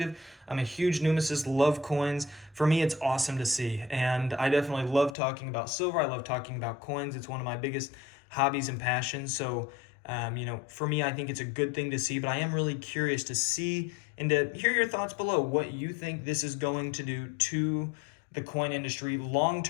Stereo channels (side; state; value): right; drops out; at 5.2 s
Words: I'm a huge numismatist, love coins. For me, it's awesome to see. And I definitely love talking about silver. I love talking about coins. It's one of my biggest hobbies and passions. So for me, I think it's a good thing to see, but I am really curious to see and to hear your thoughts below, what you think this is going to do to the coin industry long